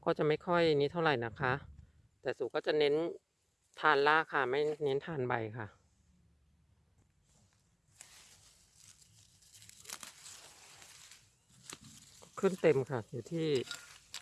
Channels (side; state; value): both; identical; correlation 1.00